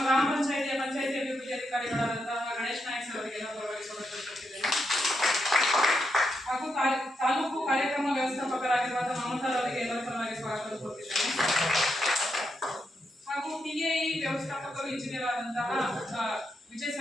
ಗ್ರಾಮ ಪಂಚಾಯಿತಿ ಅಭಿವೃದ್ಧಿ ಅಧಿಕಾರಿಗಳಾದಂತಹ ಗಣೇಶ್ ನಾಯಕ್ ಸರ್ ಅವರಿಗೆ ಎಲ್ಲರ ಪರವಾಗಿ ಸ್ವಾಗತವನ್ನು ಕೋರುತ್ತಿದ್ದೇನೆ. ಹಾಗೂ ತಾಲೂಕು ಕಾರ್ಯಕ್ರಮ ವ್ಯವಸ್ಥಾಪಕರಾಗಿರುವಂತಹ ಮಮತಾ ಅವರಿಗೆ ಎಲ್ಲರ ಪರವಾಗಿ ಸ್ವಾಗತವನ್ನು ಕೋರುತ್ತಿದ್ದೇನೆ. ಹಾಗೂ ಟಿಎಇ ವ್ಯವಸ್ಥಾಪಕರು ಇಂಜಿನಿಯರ್ ಆದಂತಹ ವಿಜಯ್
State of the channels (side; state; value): both; normal; correlation 0.82